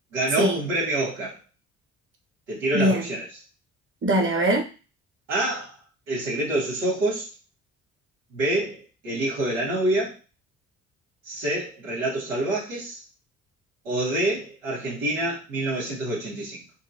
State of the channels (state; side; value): normal; both; correlation 0.37